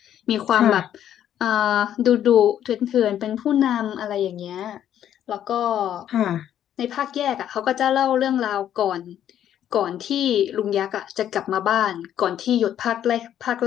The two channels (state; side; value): quieter; right; 10.6 dB